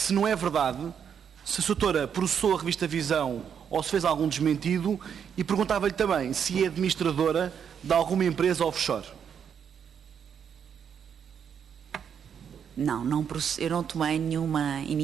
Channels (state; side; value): quieter; left; 7.8 dB